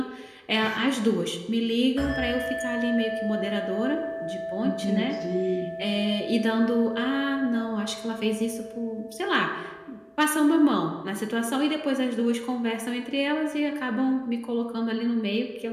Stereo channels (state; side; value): identical; both; correlation 1.00